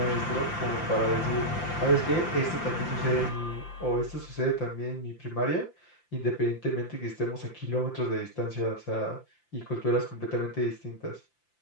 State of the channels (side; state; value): right; late; 5.8 ms